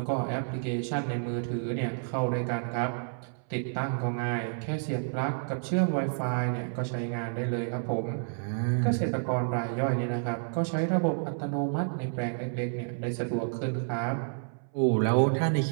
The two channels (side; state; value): left; silent; 58 dB below the other